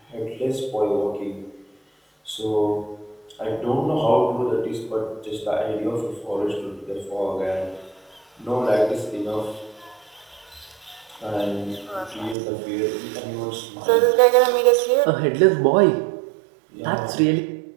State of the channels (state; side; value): drops out; left; at 12.4 s